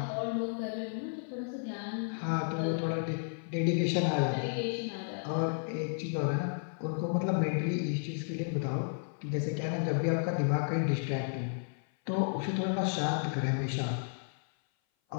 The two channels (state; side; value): silent; right; 56 dB below the other